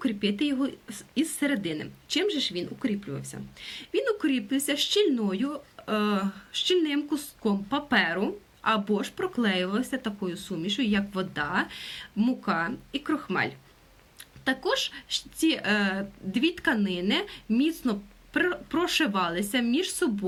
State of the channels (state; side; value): identical; both; correlation 1.00